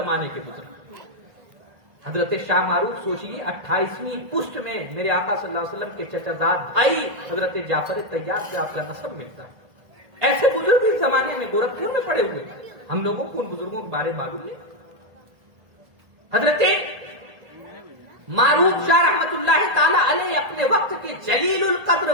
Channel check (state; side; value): late; left; 1.5 ms